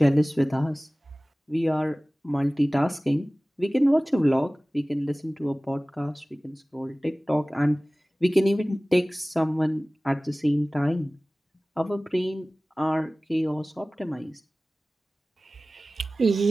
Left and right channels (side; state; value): both; normal; correlation 0.98